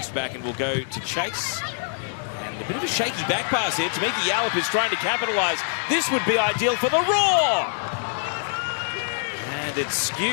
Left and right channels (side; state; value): right; silent; digital silence